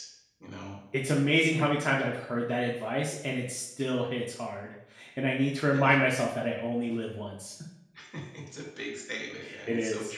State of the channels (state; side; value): identical; both; correlation 1.00